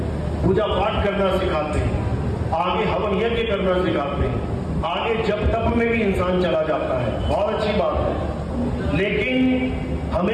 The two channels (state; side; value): identical; both; correlation 1.00